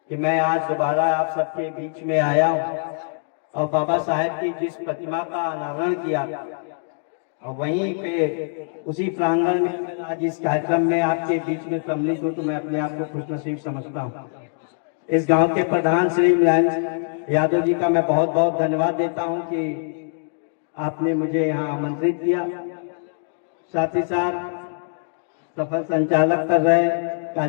कि मैं आज दोबारा आप सबके बीच में आया हूँ और बाबा साहब की जिस प्रतिमा का अनावरण किया और वहीं पे उसी प्रांगण में आज इस कार्यक्रम में आपके बीच में सम्मिलित हूँ, तो मैं अपने आप को खुशनसीब समझता हूँ। इस गांव के प्रधान श्री मुलायम यादव जी का मैं बहुत बहुत धन्यवाद देता हूँ कि आपने मुझे यहाँ आमंत्रित किया। साथ ही साथ सफल संचालक कर रहे,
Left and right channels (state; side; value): silent; right; digital silence